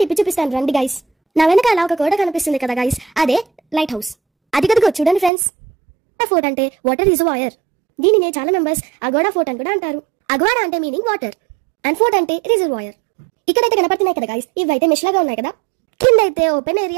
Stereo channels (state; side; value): drops out; left; at 5.3 s